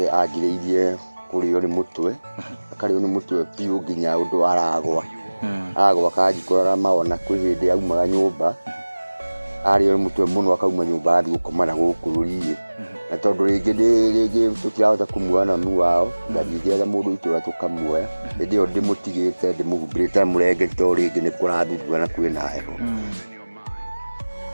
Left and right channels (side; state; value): both; inverted; correlation -1.00